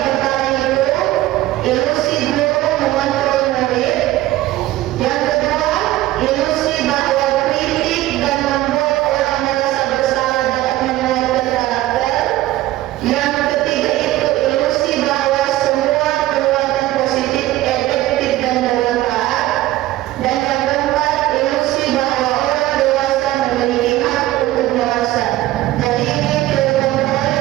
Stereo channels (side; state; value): left; quieter; 15.8 dB